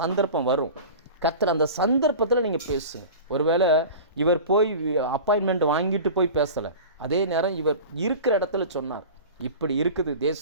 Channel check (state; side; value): inverted; both; correlation -0.35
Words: வரும். கர்த்தர் அந்த சந்தர்ப்பத்தில் நீங்கள் பேசுங்க. ஒருவேளை இவர் போய் அப்பாயின்மெண்ட் வாங்கிட்டு போய் பேசலை, அதே நேரம் இவர் இருக்கிற இடத்துல சொன்னார், இப்படி இருக்குது